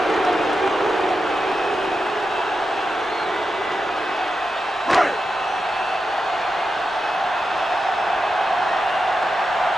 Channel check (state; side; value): normal; both; correlation 0.89